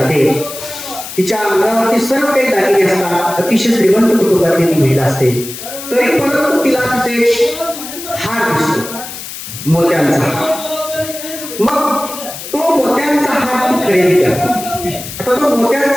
तिच्या अंगावरती सर्व काही दागिने असतात. अतिशय श्रीमंत कुटुंबातली ती महिला असते. तरी परंतु तिला तिथे हार दिसतो, मोत्यांचा हार. मग तो मोत्यांचा हार ती खरेदी करते. आता तो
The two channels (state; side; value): noise; left; hiss, 10 dB below the sound